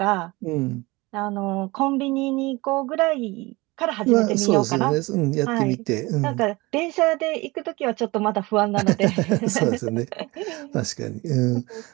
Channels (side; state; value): left; quieter; 22.8 dB